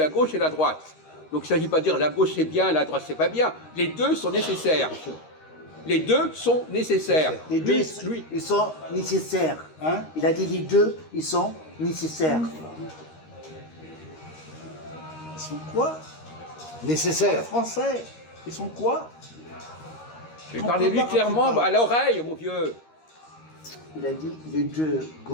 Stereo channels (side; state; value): right; late; 13 ms